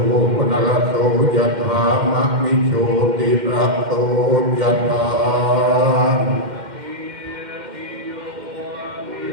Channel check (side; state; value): left; late; 2.1 ms